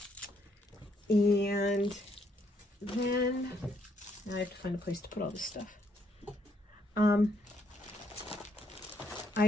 and then I have to find a place to put all this stuff.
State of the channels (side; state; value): both; normal; correlation 0.72